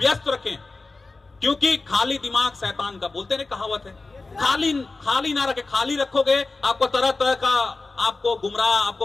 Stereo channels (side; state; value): right; quieter; 3.6 dB